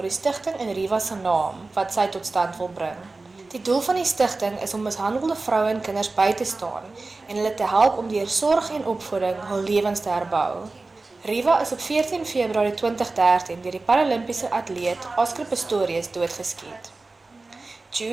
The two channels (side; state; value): left; quieter; 3.5 dB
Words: die stigting in Riva se naam wat sy tot stand wil bring. Die doel van die stigting is om mishandelde vroue en kinders by te staan en hulle te help om deur sorg en opvoeding hul lewens te herbou. Riva is op 14 Februarie 2013 deur die Paralimpiese atleet Oscar Pistorius doodgeskiet.